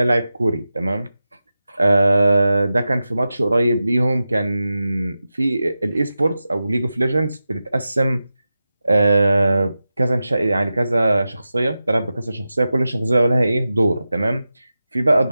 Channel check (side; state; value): both; inverted; correlation -0.93